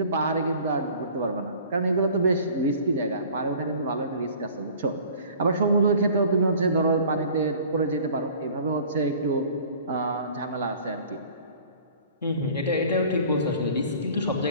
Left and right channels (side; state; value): both; inverted; correlation -0.48